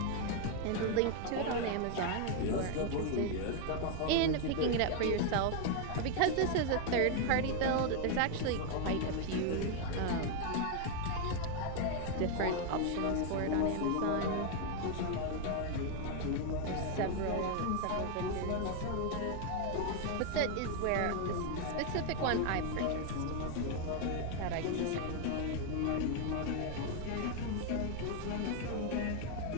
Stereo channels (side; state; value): both; different; correlation 0.01